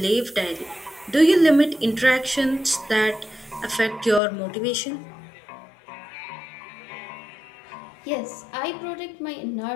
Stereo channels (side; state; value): right; drops out; at 4.2 s